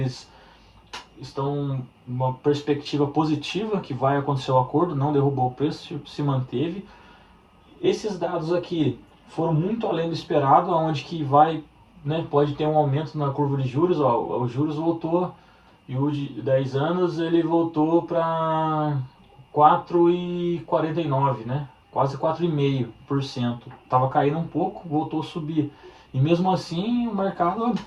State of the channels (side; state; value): both; identical; correlation 1.00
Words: estão uma perspectiva positiva que vai acontecer o acordo, não derrubou o preço, se manteve. Esses dados aqui foram muito além do esperado, onde que vai, né, pode ter um aumento na curva de juros, ó, os juros voltou, e o de 10 anos ele voltou para 4,49, né? Quase 4,5%. Estava caindo um pouco, voltou a subir. E mesmo assim o mercado